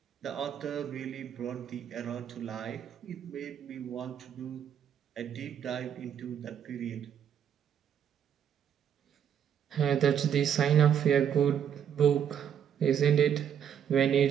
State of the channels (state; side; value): quieter; left; 8.8 dB